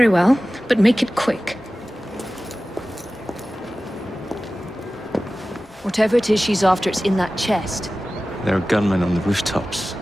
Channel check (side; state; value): both; normal; correlation 0.96